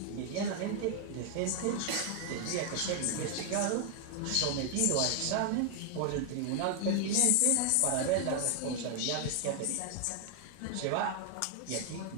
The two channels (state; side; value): different; both; correlation 0.00